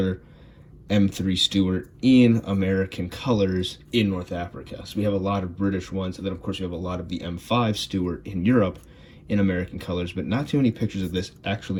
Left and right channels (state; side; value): identical; both; correlation 1.00